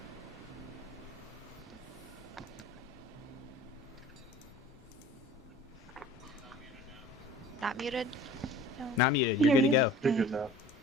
Not muted? No. Not muted. You're good to go. You're good now.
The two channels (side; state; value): both; normal; correlation 0.44